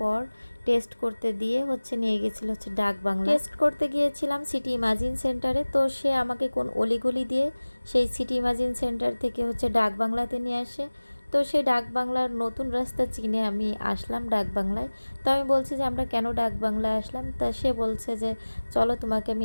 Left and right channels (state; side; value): inverted; both; correlation -1.00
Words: টেস্ট করতে দিয়ে হচ্ছে নিয়ে গেছিল হচ্ছে ডাক বাংলা। টেস্ট করতে গিয়েছিলাম সিটি ইমাজিন সেন্টারে, তো সে আমাকে কোন অলিগলি দিয়ে সেই সিটি ইমাজিন সেন্টার থেকে হচ্ছে ডাক বাংলাতে নিয়ে আসে। তো সেই ডাক বাংলার নতুন রাস্তা চিনে আমি আসলাম ডাক বাংলায়। তো আমি বলছি যে আমরা কেন ডাক বাংলায় আসলাম, তা সে বলছে যে চলো তোমাকে